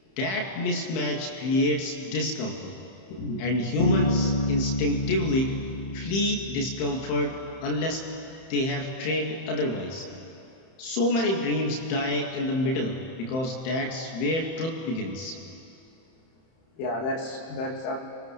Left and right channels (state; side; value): late; right; 31 ms